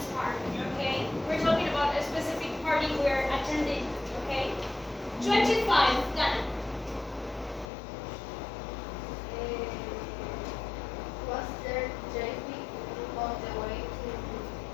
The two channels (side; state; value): right; drops out; at 7.7 s